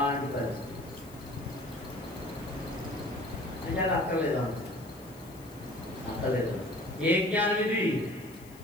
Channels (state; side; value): noise; left; hiss, 22 dB below the sound